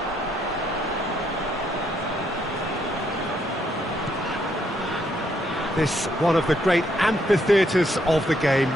This one of the great amphitheatres of the game.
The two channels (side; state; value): both; normal; correlation 0.73